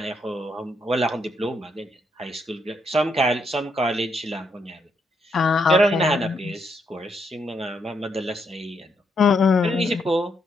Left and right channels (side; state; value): both; normal; correlation 0.77